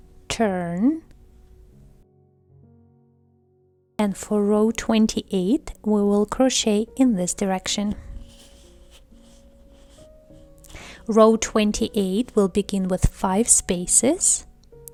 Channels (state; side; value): identical; both; correlation 1.00